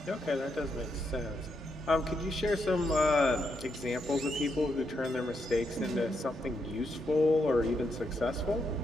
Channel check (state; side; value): normal; both; correlation 0.80